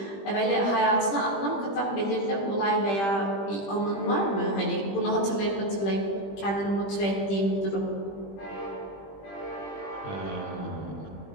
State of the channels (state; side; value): late; right; 20 ms